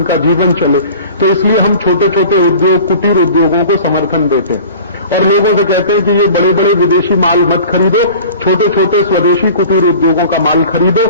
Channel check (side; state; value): both; inverted; correlation -0.42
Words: जीवन चले। तो इसलिए हम छोटे छोटे उद्योग, कुटीर उद्योगों को समर्थन देते हैं और लोगों से कहते हैं कि ये बड़े बड़े विदेशी माल मत खरीदो, छोटे छोटे स्वदेशी कुटीर उद्योगों का माल खरीदो,